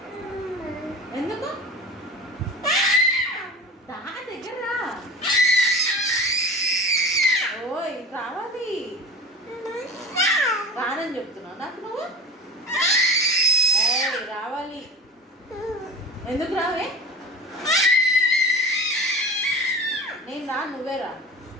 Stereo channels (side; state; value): both; normal; correlation 0.33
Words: ఎందుకు దా దగ్గర రా. ఓయ్ రావాలి రానని చెప్తున్నావు నాకు నువ్వు ఏయ్ రావాలి ఎందుకు రావే నేను రా నువ్వే రా